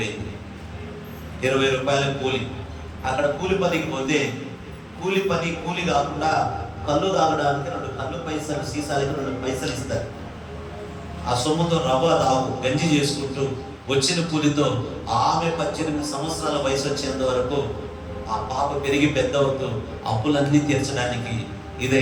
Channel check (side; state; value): both; identical; correlation 1.00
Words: 20 రూపాయల కూలి. అక్కడ కూలి పనికి పోతే కూలి కాకుండా కళ్ళు తాగడానికి 2 కళ్ళు పైసలు, సీసాలకి 2 పైసలు ఇస్తారు. ఆ సొమ్ముతో రవ్వ రావు గంజి చేసుకుంటూ వచ్చిన కూలితో ఆమె 18 సంవత్సరాల వయసు వచ్చేంత వరకు ఆ పాప పెరిగి పెద్ద అవుతూ అప్పులన్నీ తీర్చడానికి